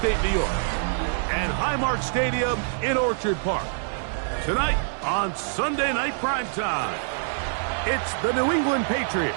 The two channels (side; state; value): left; silent; 61 dB below the other